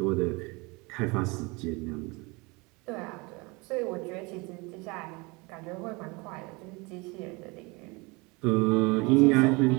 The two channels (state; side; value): quieter; left; 26.8 dB